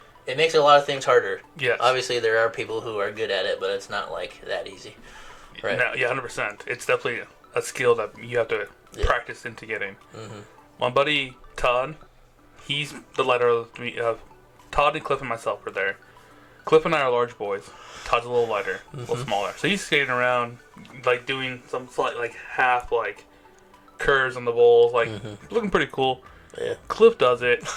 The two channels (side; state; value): both; identical; correlation 1.00